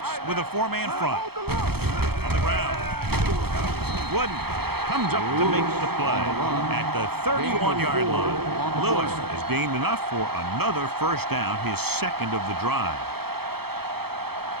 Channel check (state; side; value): late; left; 0.96 ms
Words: with a 4-man front. Hold the look. On the ground. couldn't. Comes up to make the play at the 31-yard line. Lewis has gained enough for another first down, his second of the drive.